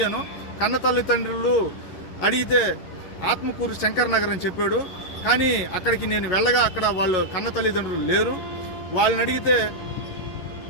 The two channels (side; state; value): right; late; 11 ms